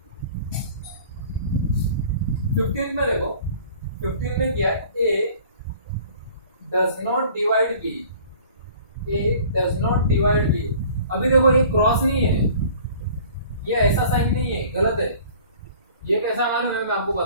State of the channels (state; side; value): inverted; both; correlation -0.48